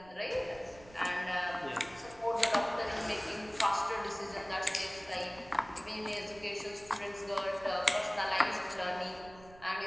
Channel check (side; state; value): right; noise; rumble, 22 dB below the sound